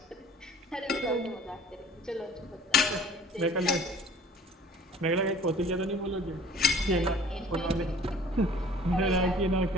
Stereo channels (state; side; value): normal; both; correlation 0.49